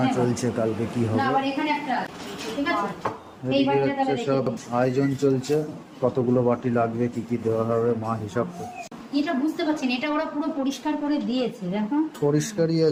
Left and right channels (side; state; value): both; identical; correlation 1.00